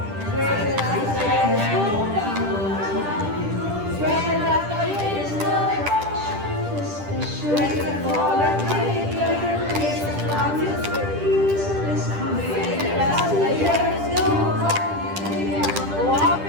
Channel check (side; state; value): left; late; 10 ms